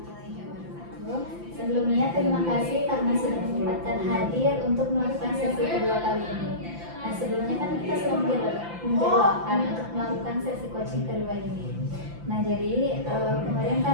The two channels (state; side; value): late; left; 5.9 ms